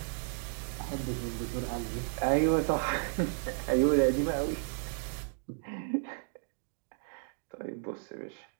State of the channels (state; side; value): silent; left; digital silence